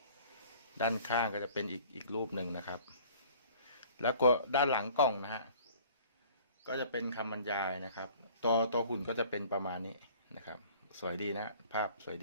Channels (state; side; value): inverted; both; correlation -0.51